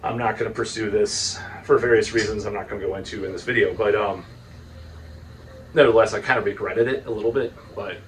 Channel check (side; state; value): both; identical; correlation 1.00